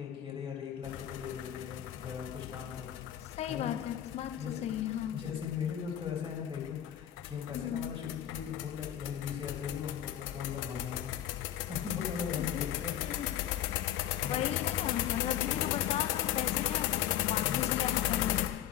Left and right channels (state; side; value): quieter; right; 11.2 dB